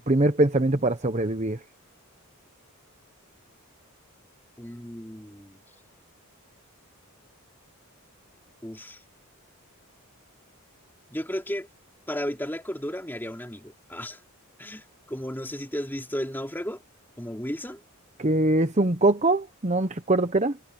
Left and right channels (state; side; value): normal; both; correlation 0.53